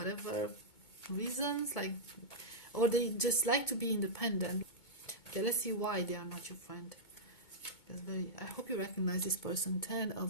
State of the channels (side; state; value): right; late; 2.2 ms